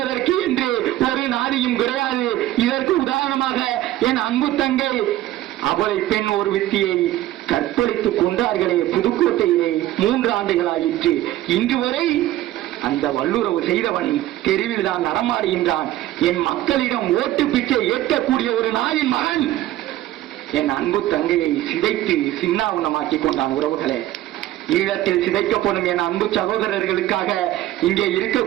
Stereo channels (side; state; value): left; quieter; 14.5 dB